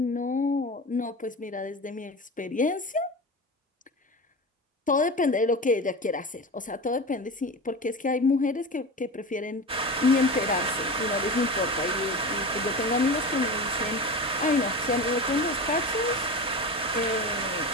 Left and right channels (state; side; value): normal; both; correlation 0.27